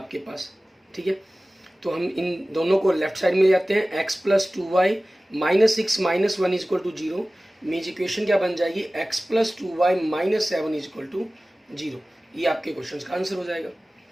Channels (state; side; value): normal; both; correlation 0.97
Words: पास, ठीक है। तो हम इन दोनों को लेफ्ट साइड में ले जाते हैं, x plus 2y minus 6 minus 1 is equal to 0। Means equation क्या बन जाएगी, x plus 2y minus 7 is equal to 0। ये आपके क्वेश्चन का आंसर हो जाएगा।